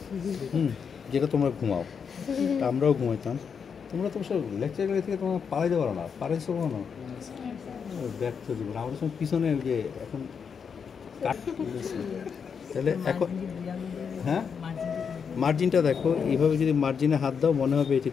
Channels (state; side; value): quieter; right; 6.5 dB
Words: যেটা তোমরা ঘুমাও, আমরাও ঘুমাইতাম। তোমরা তো সব লেকচার করে থেকে তোমরা পালাইতে পারো না, পারাইছো না, ব্যর্থ জীবন। আমাদের সঙ্গে পিছনে যে এখন কাট, তাহলে এখন হ্যাঁ মার্জিনটা দেখো, এইভাবে যদি মার্জিনে হাত দাও মনে হবে এটা